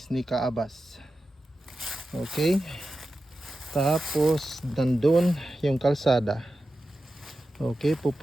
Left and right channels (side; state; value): both; normal; correlation 0.92